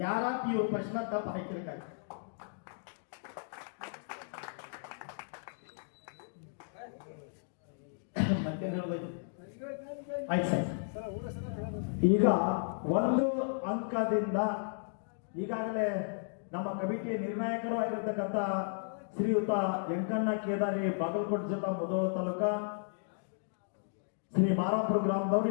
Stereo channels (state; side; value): silent; right; digital silence